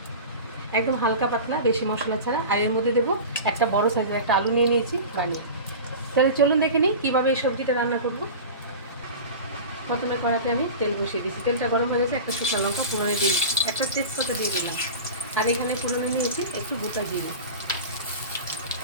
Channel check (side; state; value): both; inverted; correlation -0.32